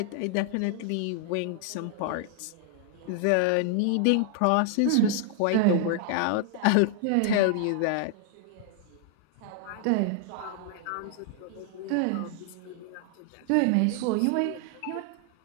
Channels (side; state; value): both; different; correlation 0.00